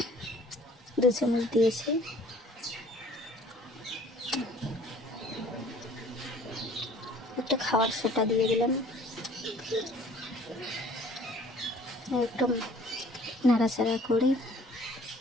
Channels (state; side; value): normal; both; correlation 0.54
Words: দিয়েছি। একটা খাওয়ার সোটা দিয়ে দিলাম, একটু নাড়াচাড়া করে